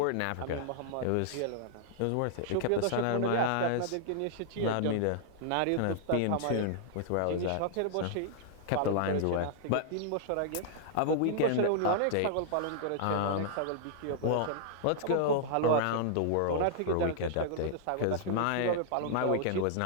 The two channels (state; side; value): different; both; correlation -0.01